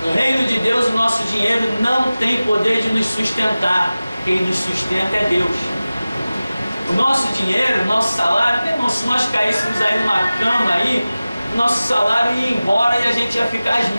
No reino de Deus o nosso dinheiro não tem poder de nos sustentar. Quem nos sustenta é Deus. O nosso dinheiro, o nosso salário, meu irmão, se nós caíssemos aí numa cama aí, o nosso salário ia embora e a gente ia ficar às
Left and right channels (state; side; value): inverted; both; correlation -0.97